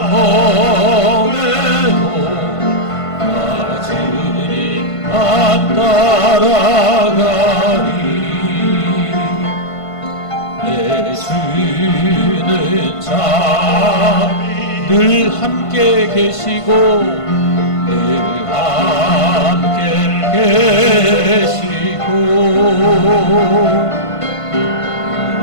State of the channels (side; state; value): right; late; 1.5 ms